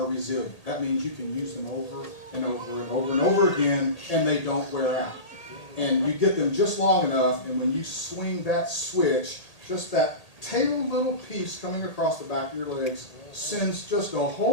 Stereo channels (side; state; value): right; late; 1.8 ms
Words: resilient. That means you can use them over and over and over and over again, and they don't wear out. And you get them just long enough, and when you swing that switch, just that tail little piece coming across the back of your legs sends just a